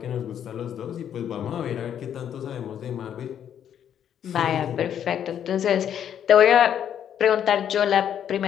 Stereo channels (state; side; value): quieter; right; 9.4 dB